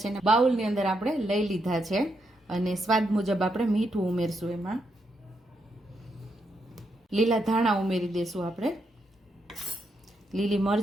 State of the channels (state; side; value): normal; both; correlation 0.80